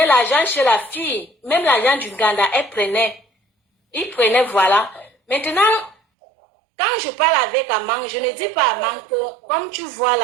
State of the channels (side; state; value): left; drops out; at 6.0 s